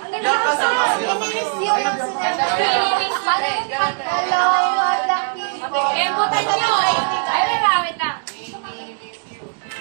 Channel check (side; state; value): left; silent; 65 dB below the other